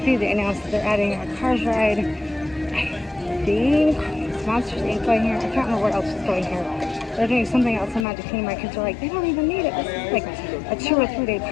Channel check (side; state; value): right; drops out; at 8.1 s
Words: They announced that they're adding a Cars ride. I think Monsters Inc. going here. I can't remember what else is going here. They're doing something else in Magic Kingdom. My kids are like, they don't even need it. This is like a 2 or 3 day